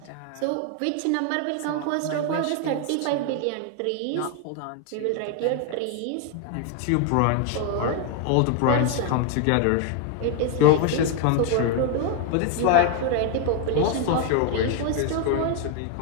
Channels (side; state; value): both; different; correlation 0.00